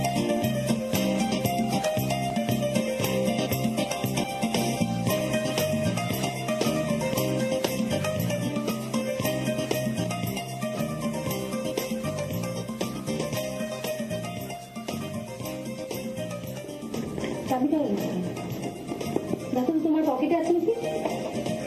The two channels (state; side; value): identical; both; correlation 1.00